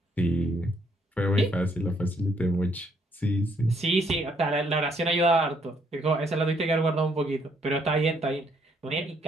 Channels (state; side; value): normal; both; correlation 0.69